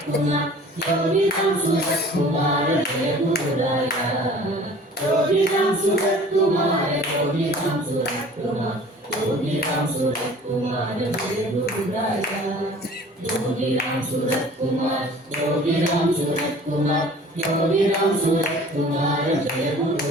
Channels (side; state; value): both; normal; correlation 0.47